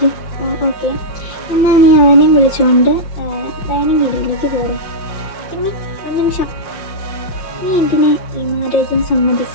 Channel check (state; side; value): late; right; 5.7 ms